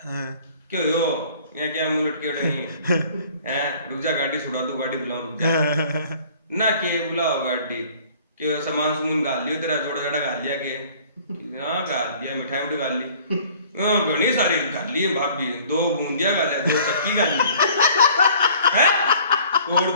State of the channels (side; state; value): both; inverted; correlation -0.53